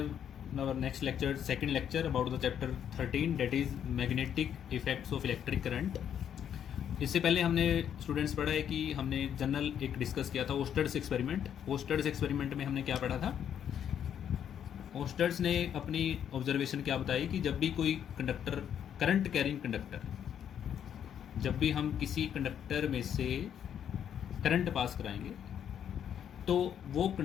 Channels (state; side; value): quieter; right; 9.1 dB